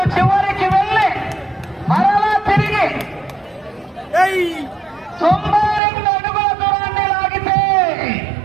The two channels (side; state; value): left; drops out; at 5.8 s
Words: చివరికి వెళ్ళి మరలా తిరిగి 92 అడుగుల దూరాన్ని లాగితే